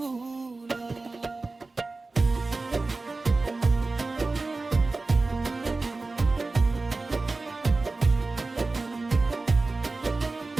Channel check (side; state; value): left; quieter; 3.5 dB